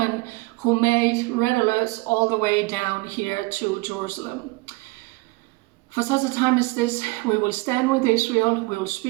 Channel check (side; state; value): left; quieter; 24.3 dB